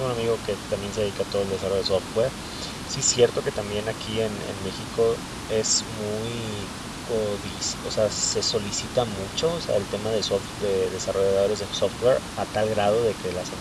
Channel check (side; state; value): both; identical; correlation 1.00